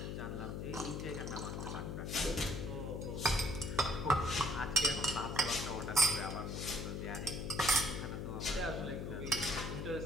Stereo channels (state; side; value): noise; left; hum, 4 dB below the sound